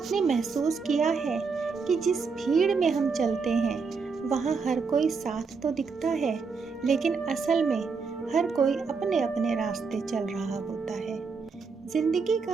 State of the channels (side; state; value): left; quieter; 5.0 dB